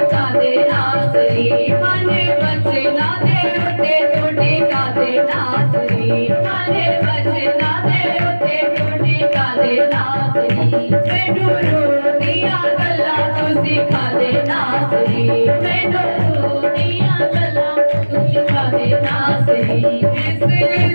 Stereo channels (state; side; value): inverted; both; correlation -1.00